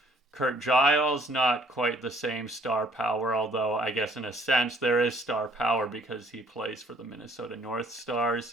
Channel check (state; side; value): normal; both; correlation 0.60